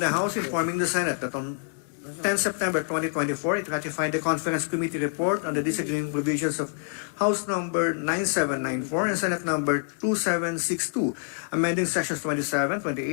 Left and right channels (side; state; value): right; silent; 60 dB below the other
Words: House informing the Senate that on 10 September 2024, it ratified the Conference Committee report on the disagreeing provisions of House number 9794 and Senate number 2762, amending sections 27,